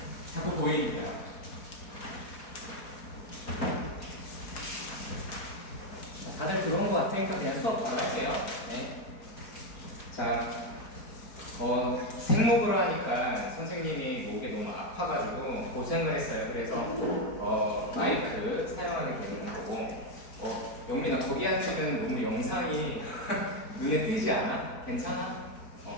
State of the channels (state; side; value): late; right; 4.5 ms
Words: 자꾸 보이니까. 다들 들어온 것 같으니까 그냥 수업 바로 할게요. 네. 자, 생목으로 하니까 선생님이 목이 너무 아파가지고 고생을 했어요. 그래서 마이크 사용하게 되는 거고, 영민아 거기 앉으면 너무 영상이 눈에 띄지 않아? 괜찮아?